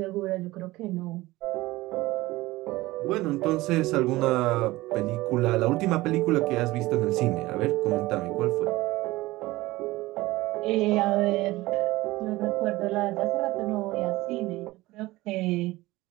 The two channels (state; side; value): quieter; left; 19.0 dB